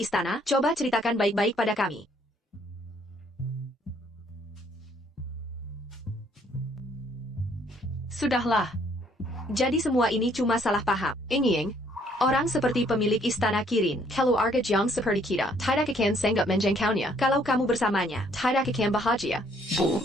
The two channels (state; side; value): normal; both; correlation 0.65